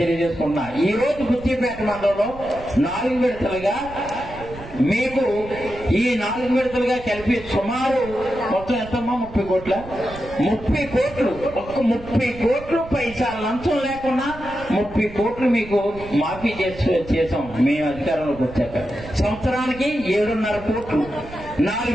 తెలియజేసుకున్నా. ఈ రోజు బుచ్చిపేట మండలంలో 4 విడతలుగా మీకు ఈ 4 విడతలుగా కలిపి సుమారు మొత్తం ఎంతమ్మా 30 కోట్ల 30 కోట్లు ఒక్క 30 కోట్లు పైసా లంచం లేకుండా 30 కోట్లు మీకు మాఫీ చేసాం మేము అధికారంలోకి వచ్చాక. సంవత్సరానికి 7.5 కోట్లు 4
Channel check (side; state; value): right; noise; rumble, 16 dB below the sound